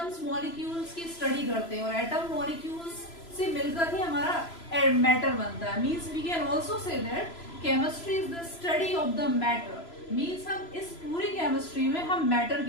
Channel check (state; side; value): late; right; 3.0 ms